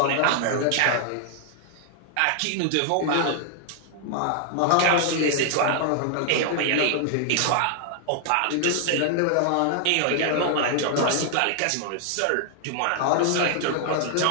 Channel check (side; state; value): both; different; correlation 0.00